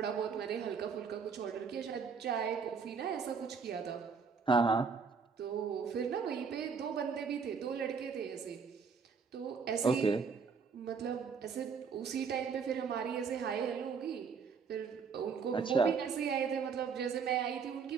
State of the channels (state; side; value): quieter; left; 5.7 dB